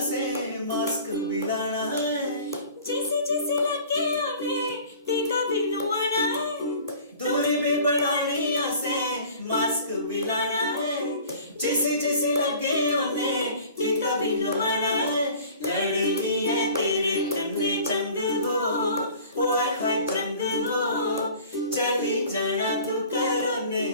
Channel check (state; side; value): inverted; both; correlation -0.46